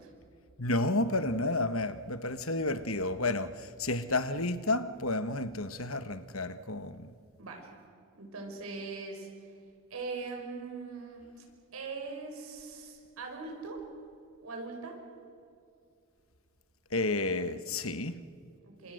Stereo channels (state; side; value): normal; both; correlation -0.09